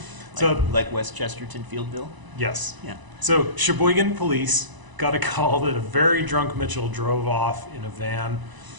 Like West Chesterton, Fieldville? Yes. Yeah. So Sheboygan police got a call that a very drunk Mitchell drove off in a van.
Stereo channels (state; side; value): late; left; 1.0 ms